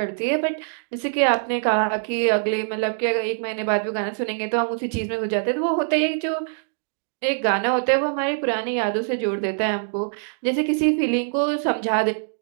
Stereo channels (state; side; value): silent; left; digital silence